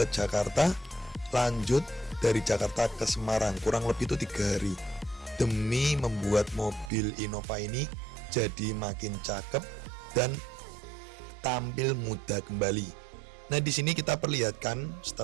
Jakarta, lanjut dari Jakarta ke Semarang kurang lebih itu 3 hari demi membuat mobil Innova ini jadi makin cakep dan tampil muda kembali. Nah, di sini kita perlihatkan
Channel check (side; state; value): left; drops out; at 6.9 s